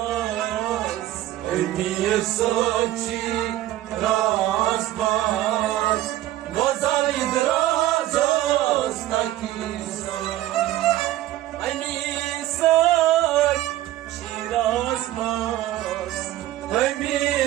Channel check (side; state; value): left; quieter; 14.5 dB